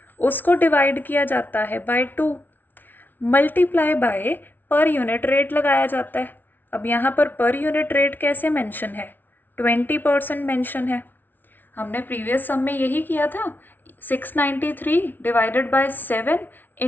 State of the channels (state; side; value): late; right; 0.089 ms